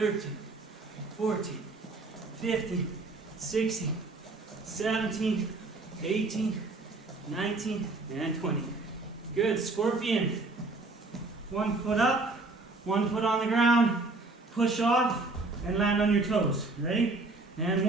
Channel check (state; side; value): quieter; left; 3.3 dB